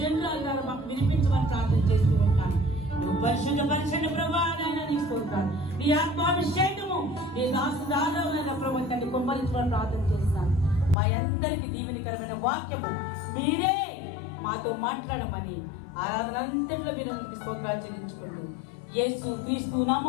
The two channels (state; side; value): drops out; right; at 11.0 s